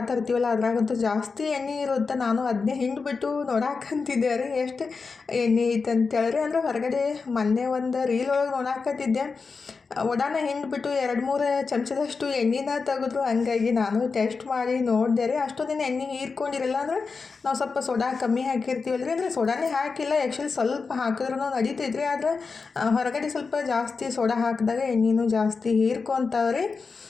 ತರ್ತೀವಲ್ಲ ಅದ್ರಾಗಂತೂ ಜಾಸ್ತಿ ಎಣ್ಣೆ ಇರುತ್ತೆ ನಾನು ಅದನ್ನೇ ಹಿಂಡ್ಬಿಟ್ಟು ನೋಡಾಕಂತಿದ್ದೆ ರೀ ಎಷ್ಟು ಎಣ್ಣೆ ಐತೆ ಅಂತೇಳ್ರಿ ಅಂದರೆ ಹೊರಗಡೆ ಮೊನ್ನೆ ಒಂದು ರೀಲ್ ಒಳಗೆ ನೋಡಾಕತ್ತಿದ್ದೆ ವಡಾನ ಹಿಂಡ್ಬಿಟ್ಟು 2-3 ಚಮಚದಷ್ಟು ಎಣ್ಣೆನ ತೆಗೆದ್ರು ಹಂಗಾಗಿ ನಾನು ಟೆಸ್ಟ್ ಮಾಡಿ ನೋಡಿದೆ ರೀ ಅಷ್ಟೊಂದಿನ ಎಣ್ಣೆ ಹೀರ್ಕೊಂಡಿರಲ್ಲ ಅಂದರೆ ನಾವು ಸ್ವಲ್ಪ ಸೋಡಾ ಕಮ್ಮಿ ಹಾಕಿರ್ತೀವಲ್ಲ ರೀ ಅಂದರೆ ಸೋಡಾನೇ ಹಾಕಿಲ್ಲ ಆ್ಯಕ್ಚುಲಿ ಸ್ವಲ್ಪ ಹಾಕಿದ್ರೂ ನಡೀತೈತ್ರಿ ಆದರೆ ಹೊರಗಡೆ ಸ್ವಲ್ಪ ಜಾಸ್ತಿ ಸೋಡಾ ಹಾಕಿದಾಗ ಎಣ್ಣೆನೂ ಜಾಸ್ತಿ ಹೀರ್ಕೊತಾವ್ರಿ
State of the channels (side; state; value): right; quieter; 4.7 dB